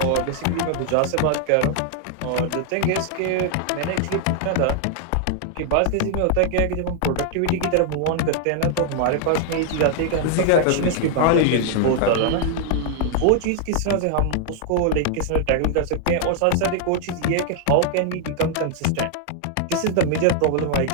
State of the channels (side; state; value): both; different; correlation 0.00